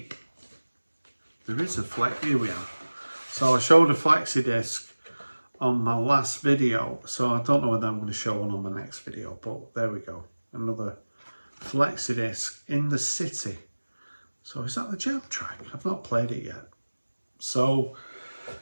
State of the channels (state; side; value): inverted; both; correlation -1.00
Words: There is a flex, here we are. So I showed a flexi disc on my last video, so I don't know whether I'm going to show one on my next video, but there we go. Another flexi disc, In the City. So is that the jam track? I've not played it yet. So